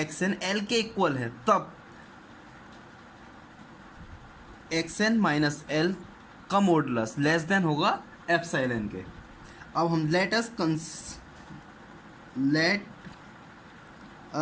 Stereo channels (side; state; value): both; identical; correlation 1.00